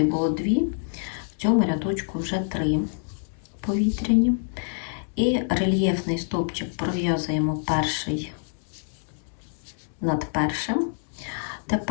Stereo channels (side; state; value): right; silent; digital silence